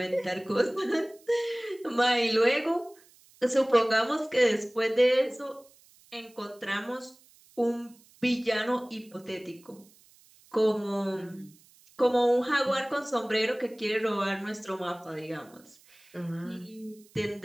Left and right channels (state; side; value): noise; right; hiss, 28 dB below the sound